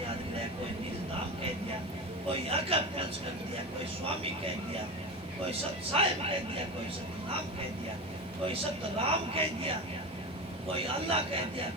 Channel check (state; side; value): normal; both; correlation 0.24